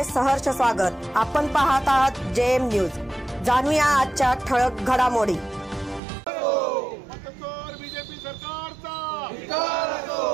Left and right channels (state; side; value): drops out; left; at 6.0 s